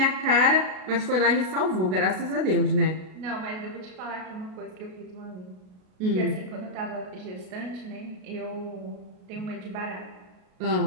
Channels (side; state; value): left; late; 33 ms